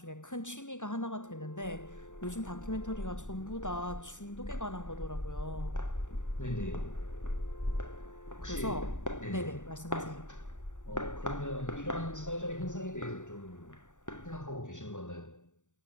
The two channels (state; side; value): late; right; 0.86 ms